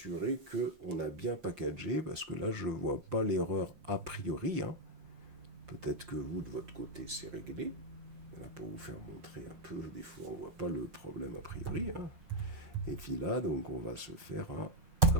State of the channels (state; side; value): late; left; 5.6 ms